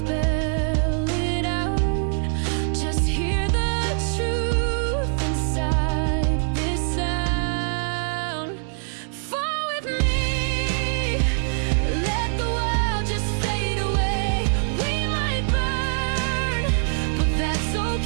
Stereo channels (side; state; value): left; silent; digital silence